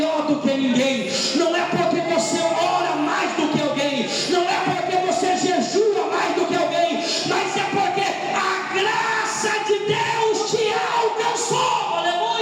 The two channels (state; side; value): identical; both; correlation 1.00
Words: do que ninguém, não é porque você ora mais do que alguém, não é porque você jejua mais do que alguém, mas é porque a graça de Deus te alcançou.